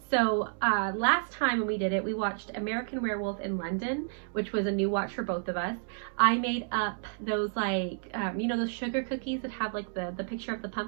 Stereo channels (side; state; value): left; silent; digital silence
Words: So last time when we did it, we watched American Werewolf in London, which was a new watch for both of us. I made up those like, you know, those sugar cookies that have like the picture of the